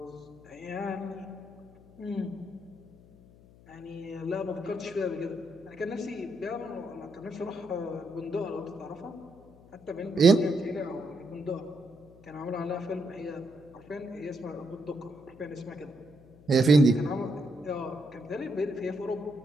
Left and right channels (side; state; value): left; noise; hum, 23 dB below the sound